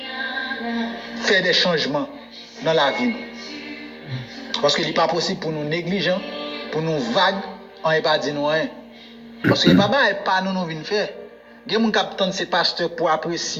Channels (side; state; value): both; identical; correlation 1.00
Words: à faire des changements dans la vie. Parce qu'il n'est pas possible pour nous négligents, pour nous vagues, on n'est pas dit nous rien. Parce que papa n'est pas nous venons faire. Il y a des gens qui c'est pasteur pour